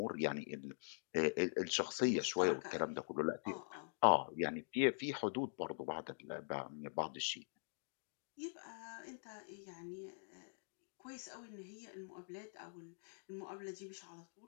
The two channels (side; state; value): right; silent; digital silence